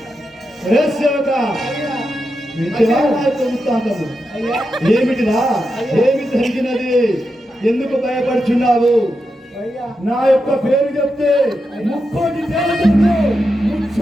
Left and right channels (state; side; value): normal; both; correlation 0.87